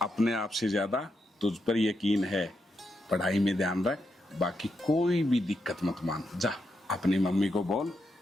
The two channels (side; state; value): both; normal; correlation 0.83